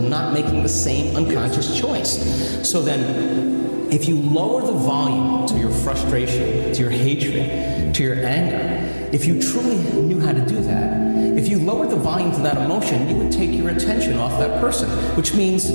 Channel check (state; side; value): inverted; both; correlation -1.00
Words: not making the same unconscious choice. So then, if you lower the volume to your frustration, to your hatred, to your anger, if you truly knew how to do that, if you lowered the volume to that emotion, you would take your attention off that person, which means